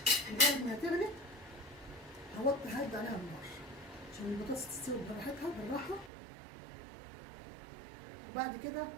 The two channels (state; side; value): drops out; left; at 6.1 s